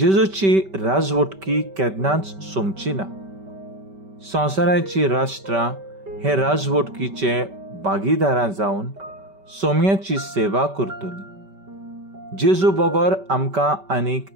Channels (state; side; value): late; left; 5.2 ms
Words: राजवटकी केन्नाच सोंपची ना. संवसाराची राष्ट्रां हे राजवटकीचे भागीदारां जावन सोम्याची सेवा करतली. जेजू बगर आमकां आनीक